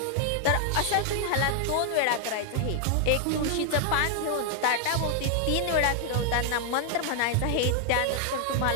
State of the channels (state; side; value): different; both; correlation 0.00